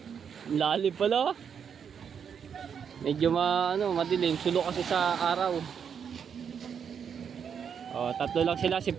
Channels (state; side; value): quieter; left; 7.3 dB